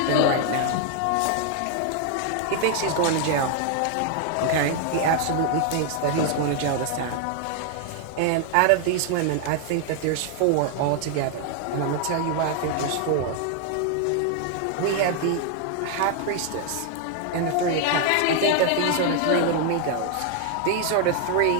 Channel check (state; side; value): different; both; correlation 0.00